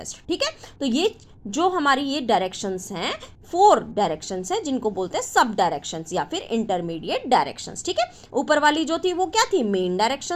ठीक है, तो ये जो हमारी ये डायरेक्शंस हैं, 4 डायरेक्शंस हैं जिनको बोलते हैं सब डायरेक्शंस या फिर इंटरमीडिएट डायरेक्शंस। ठीक है, ऊपर वाली जो थी वो क्या थी, मेन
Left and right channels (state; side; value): identical; both; correlation 1.00